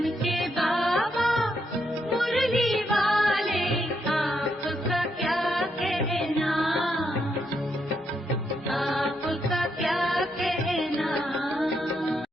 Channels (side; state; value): both; normal; correlation 0.79